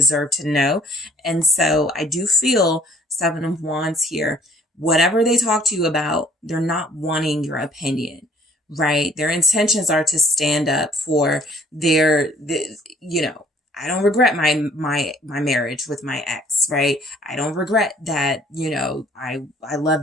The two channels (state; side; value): normal; both; correlation 0.58